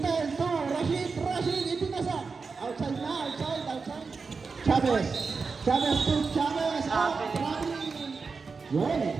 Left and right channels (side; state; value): left; quieter; 4.7 dB